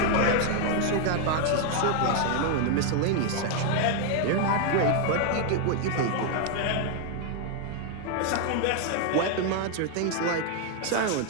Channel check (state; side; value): different; both; correlation 0.00